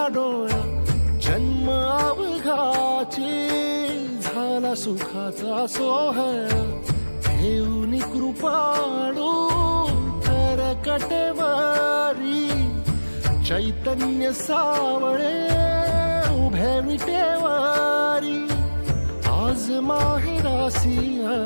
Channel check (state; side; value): inverted; both; correlation -1.00